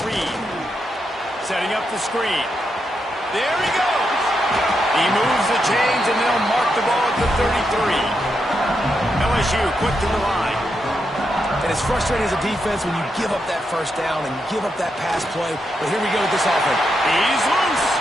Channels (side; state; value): both; normal; correlation 0.83